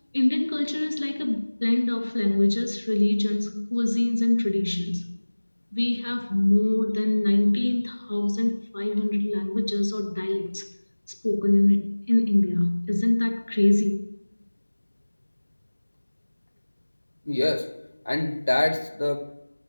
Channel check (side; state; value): both; inverted; correlation -1.00